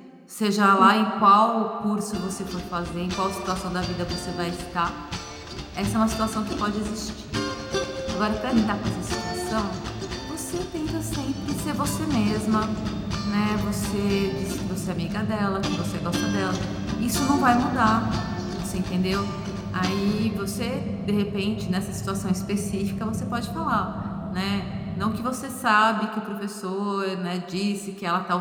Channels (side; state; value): both; identical; correlation 1.00